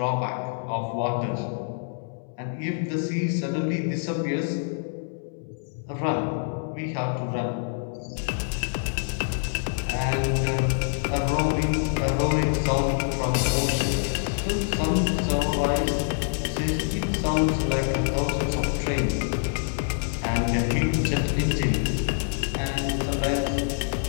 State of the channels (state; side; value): silent; right; 61 dB below the other